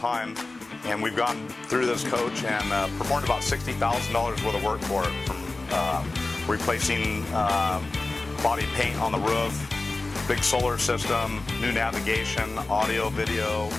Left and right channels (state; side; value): quieter; right; 3.2 dB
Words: and we've gone through this coach and performed about $60,000 worth of work for it, from replacing body paint on the roof, big solar system, new navigation, audio, video,